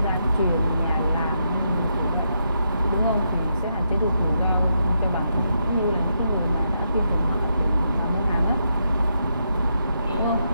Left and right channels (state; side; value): inverted; both; correlation -0.81